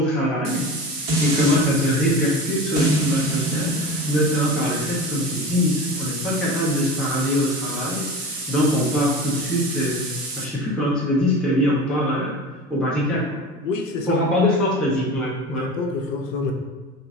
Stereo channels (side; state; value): both; normal; correlation 0.31